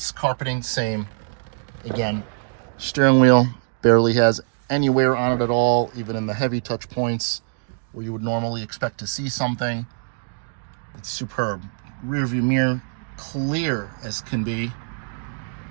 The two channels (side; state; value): left; silent; 58 dB below the other